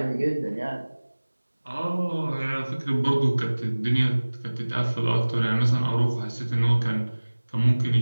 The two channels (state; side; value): inverted; both; correlation -1.00